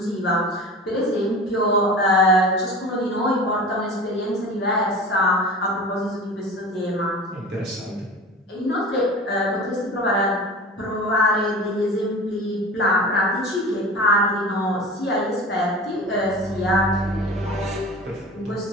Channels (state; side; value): normal; both; correlation 0.36